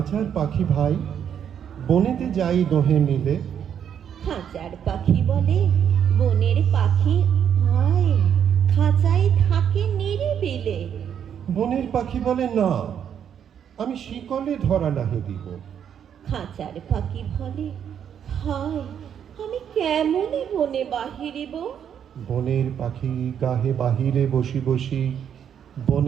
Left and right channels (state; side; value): quieter; left; 8.6 dB